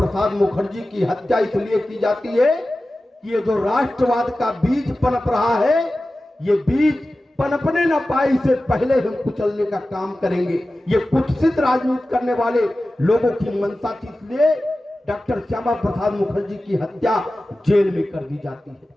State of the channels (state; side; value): normal; both; correlation 0.95